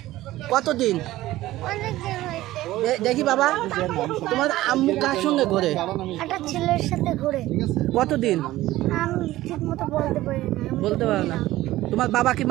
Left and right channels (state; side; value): quieter; left; 16.1 dB